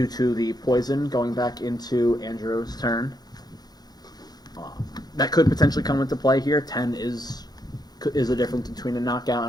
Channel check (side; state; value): right; late; 0.19 ms